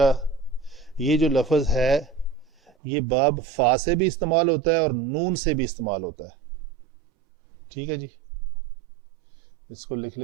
یہ جو لفظ ہے یہ باب فا سے بھی استعمال ہوتا ہے اور نون سے بھی استعمال ہوتا ہے. ٹھیک ہے جی, اس کو لکھ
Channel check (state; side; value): drops out; left; at 2.7 s